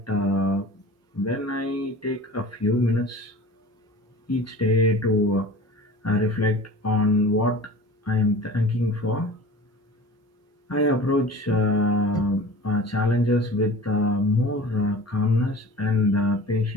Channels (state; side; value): normal; both; correlation 0.40